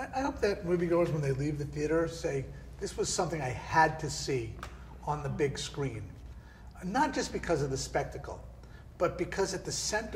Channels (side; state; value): both; identical; correlation 1.00